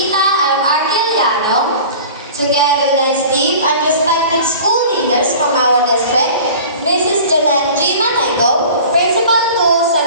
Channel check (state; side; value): inverted; both; correlation -0.41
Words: M. Arquiliano, together with his team and respected school leaders from our district, Mrs. Jeanette G. Manego, Principal to San